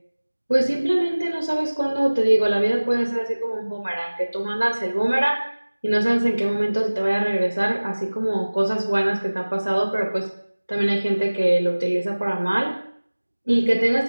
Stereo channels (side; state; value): both; inverted; correlation -1.00